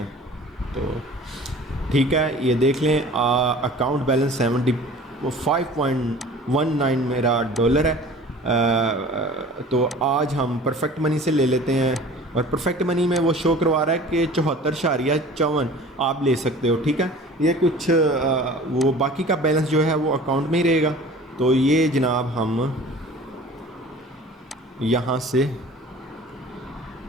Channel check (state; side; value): normal; both; correlation 0.44